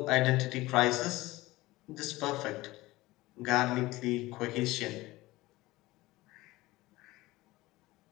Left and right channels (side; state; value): right; quieter; 19.1 dB